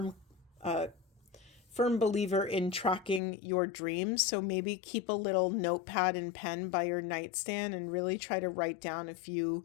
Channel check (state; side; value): drops out; right; at 3.2 s